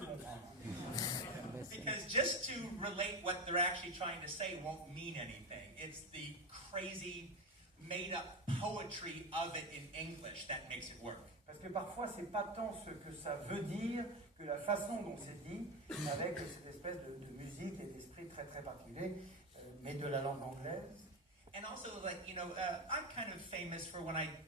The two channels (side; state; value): both; normal; correlation 0.18